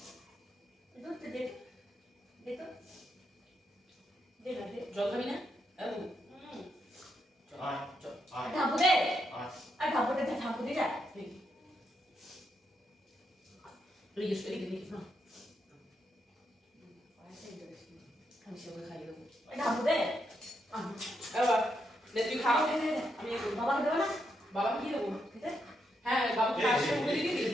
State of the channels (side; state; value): both; normal; correlation 0.81